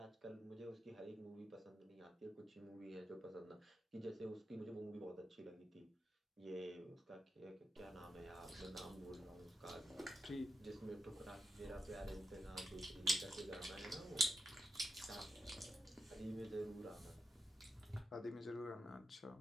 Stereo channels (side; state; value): both; normal; correlation 0.85